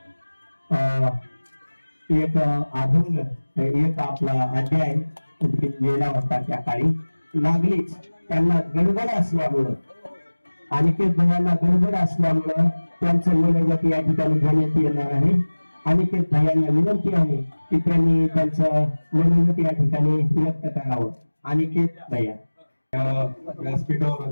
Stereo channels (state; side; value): inverted; both; correlation -1.00